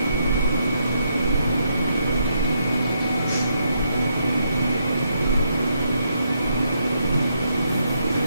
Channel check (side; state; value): both; inverted; correlation -0.77